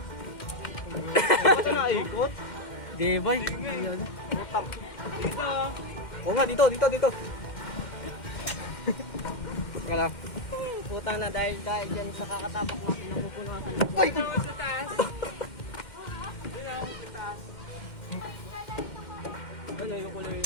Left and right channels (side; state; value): right; late; 2.1 ms